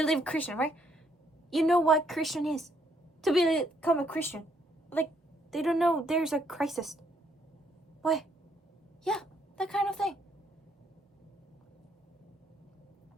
Christian, right? You know what Christian is. To become a Christian. Like, they don't know there's a crisis. Why? Yeah, that kind of thing.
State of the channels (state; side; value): normal; both; correlation 0.71